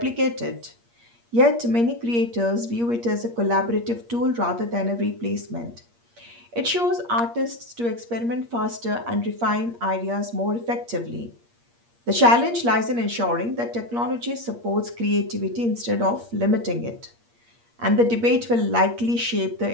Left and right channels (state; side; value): late; left; 8.5 ms